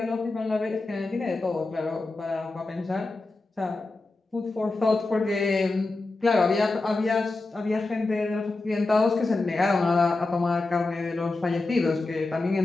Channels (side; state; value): right; quieter; 3.3 dB